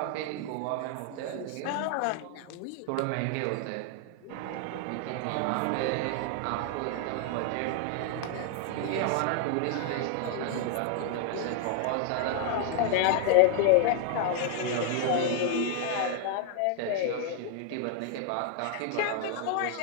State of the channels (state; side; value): different; both; correlation 0.00